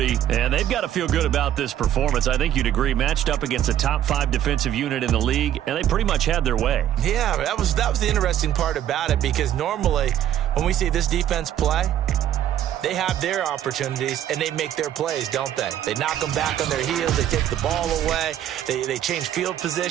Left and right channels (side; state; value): left; quieter; 11.2 dB